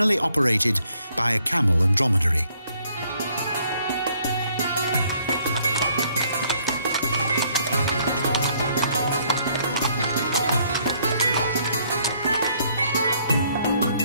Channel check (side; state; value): both; inverted; correlation -0.66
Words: operated by a camel and dromedary.